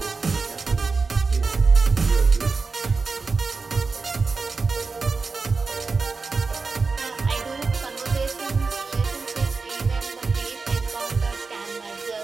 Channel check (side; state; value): left; quieter; 4.3 dB